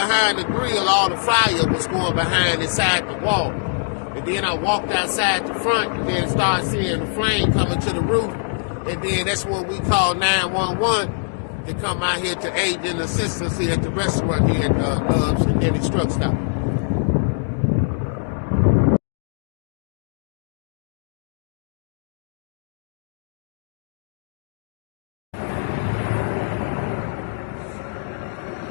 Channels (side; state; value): right; silent; digital silence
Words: the grill, all the fire was going behind inside the wall. And then I walked outside the front and then started seeing the flame coming to the roof. And then that's when we called 911 to come out here to aid in assistance here at the restaurant here at Love's and Dennys Truck Stop.